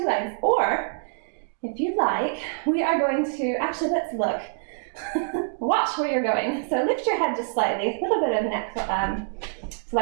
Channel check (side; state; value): left; silent; digital silence